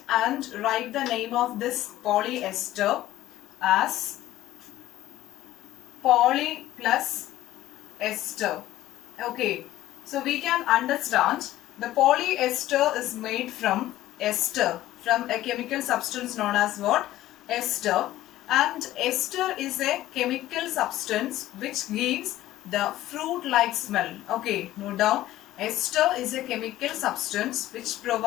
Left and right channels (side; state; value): right; quieter; 14.7 dB